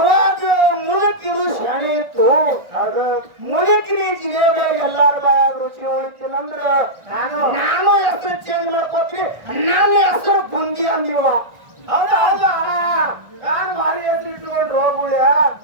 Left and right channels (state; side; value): late; left; 1.4 ms